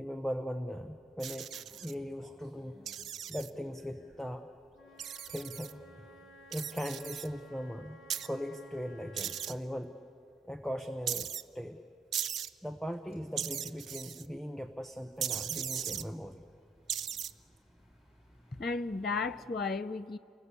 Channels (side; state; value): both; normal; correlation 0.74